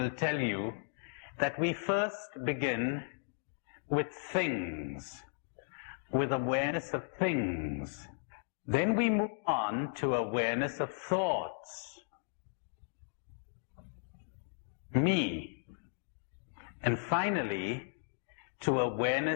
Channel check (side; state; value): right; silent; digital silence